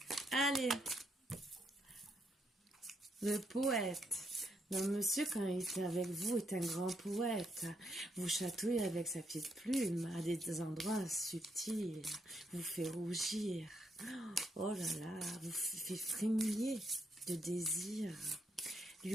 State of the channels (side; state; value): both; normal; correlation 0.76